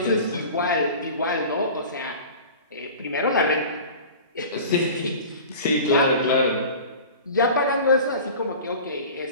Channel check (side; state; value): both; inverted; correlation -0.39